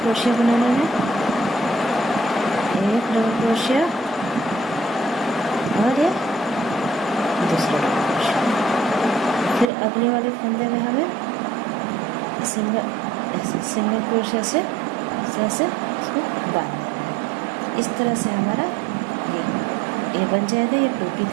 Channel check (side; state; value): left; drops out; at 9.7 s